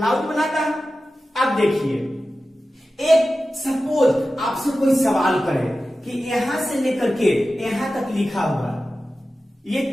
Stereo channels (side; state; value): both; normal; correlation 0.94